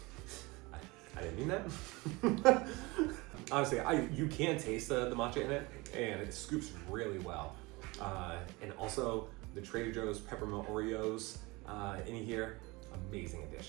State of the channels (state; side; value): quieter; left; 23.9 dB